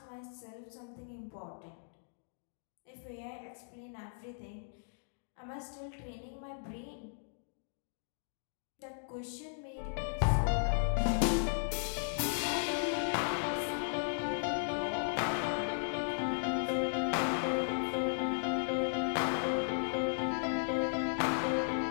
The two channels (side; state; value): right; silent; digital silence